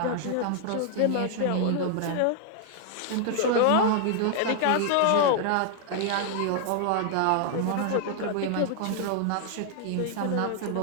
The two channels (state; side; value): different; both; correlation 0.00